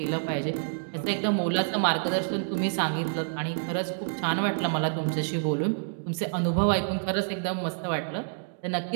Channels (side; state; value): left; silent; digital silence